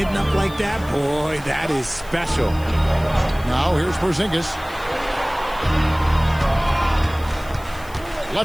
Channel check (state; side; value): noise; left; hiss, 22 dB below the sound